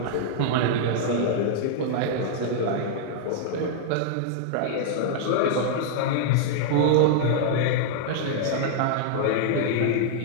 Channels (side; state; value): both; different; correlation -0.01